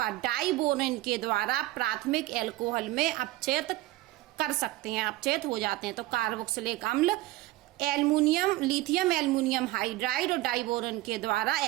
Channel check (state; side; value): quieter; left; 17.7 dB